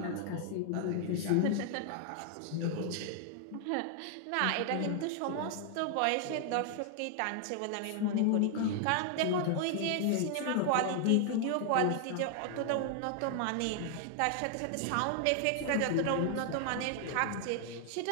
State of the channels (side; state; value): both; different; correlation 0.00